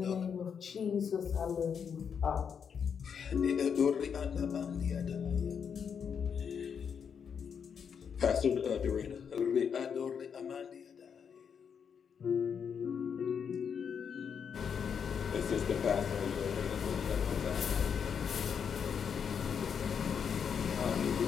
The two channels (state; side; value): quieter; right; 7.1 dB